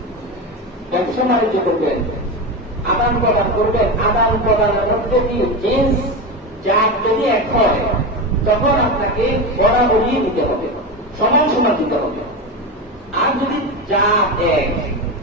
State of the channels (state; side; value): normal; both; correlation 0.19